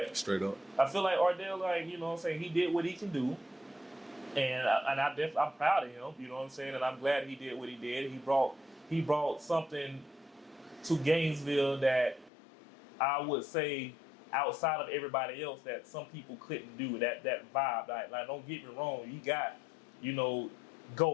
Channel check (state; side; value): drops out; right; at 12.3 s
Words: straight up, I feel like Ardell, like you know what I'm saying, he did what he can do, and I'm proud of him. You know what I'm saying, and I'm glad he did what he did. He brought something to Gainesville that I would say outside of everybody else that some people couldn't do. That vibe. Like don't get me wrong, you got, you know,